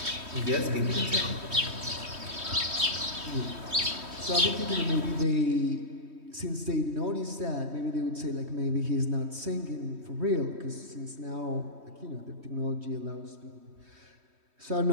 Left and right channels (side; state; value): left; late; 3.2 ms